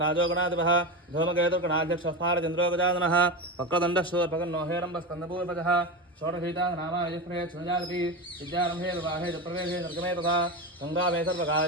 गणाधिपः धूमकेतुर्गणाध्यक्षस्फारचन्द्रो गजाननः वक्रदण्डशूर्पकर्णो हेरम्बस्कन्दपूर्वजः षोडशीतानामायफ्रे क्षुजागति विद्यारम्भे विवाहे च प्रवेशे निर्गमे तथा सङ्ग्रामे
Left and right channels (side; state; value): both; normal; correlation 0.20